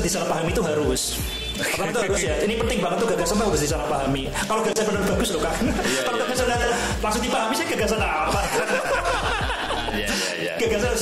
disalahpahami itu harus. Pertama itu harus ya. Ini penting banget tuh, gagasan harus disalahpahami. Kalau gagasan benar bagus loh kan. Kalau gagasan langsung dipahami sih gagasan apa? Gagasan harus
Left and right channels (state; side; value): identical; both; correlation 1.00